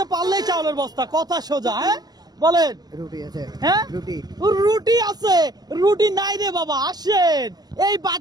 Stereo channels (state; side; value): late; left; 0.19 ms